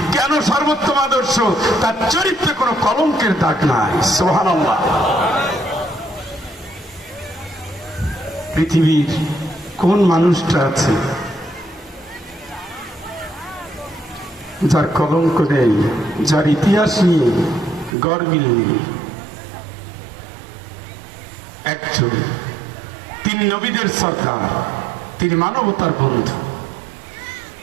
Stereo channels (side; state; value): left; drops out; at 17.9 s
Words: কেন সর্বোত্তম আদর্শ? তার চরিত্রে কোনো কলঙ্কের দাগ নাই। সুবহানাল্লাহ। পৃথিবীর কোন মানুষটা আছে যার কলঙ্ক নেই, যার ইতিহাস নিয়ে গর্বিল নেই? একজন, তিনি নবীদের সরদার, তিনি মানবতার বন্ধু,